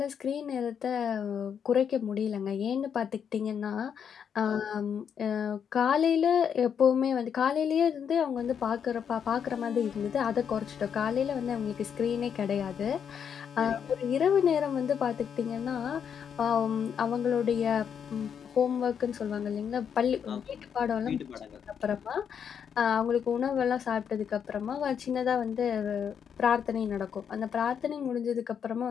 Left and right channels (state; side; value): quieter; right; 7.7 dB